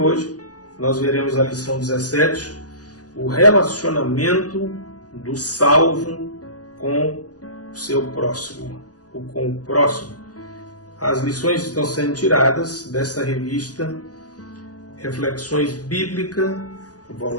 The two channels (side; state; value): right; late; 0.67 ms